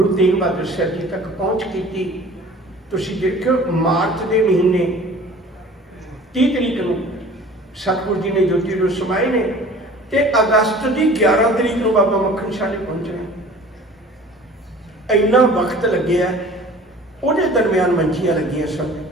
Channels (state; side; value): normal; both; correlation 0.45